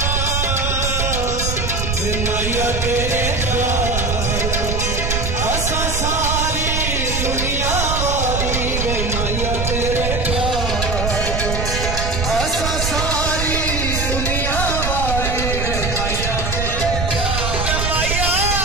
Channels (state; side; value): noise; right; rumble, 2 dB below the sound